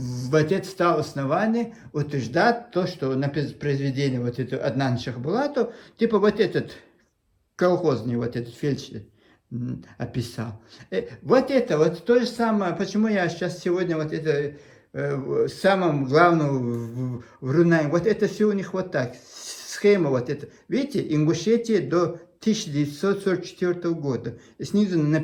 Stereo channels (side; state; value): both; identical; correlation 1.00